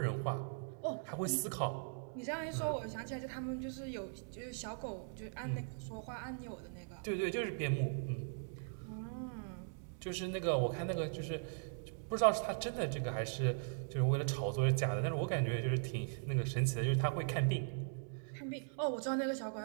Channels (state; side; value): silent; left; digital silence